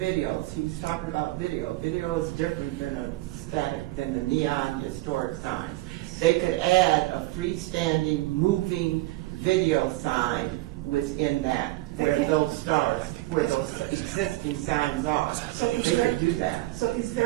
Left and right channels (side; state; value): left; quieter; 18.9 dB